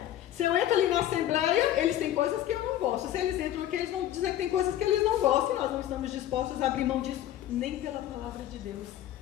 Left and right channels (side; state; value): right; quieter; 12.4 dB